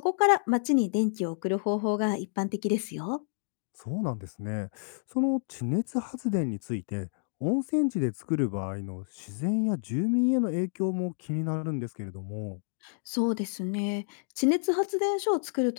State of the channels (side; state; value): right; silent; digital silence